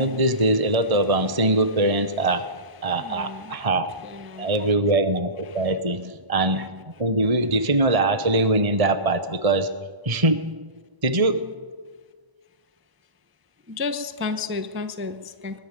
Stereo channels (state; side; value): late; left; 1.0 ms